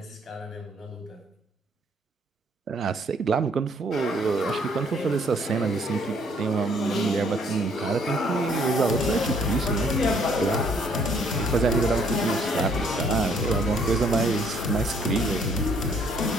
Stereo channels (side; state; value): both; normal; correlation 0.64